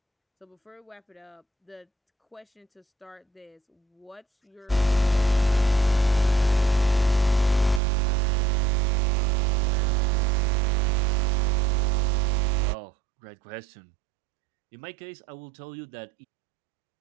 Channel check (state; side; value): drops out; left; at 7.8 s